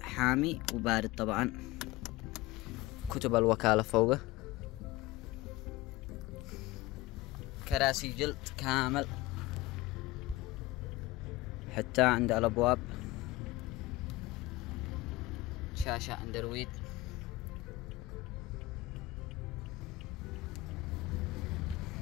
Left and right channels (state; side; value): quieter; right; 17.4 dB